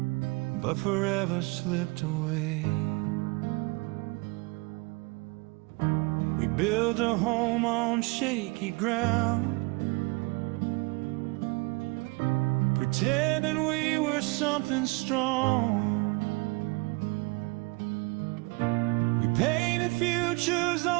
but forever slipped away. We built a home on shaky ground, pretending we were something strong. We painted futures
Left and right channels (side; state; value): left; quieter; 27.0 dB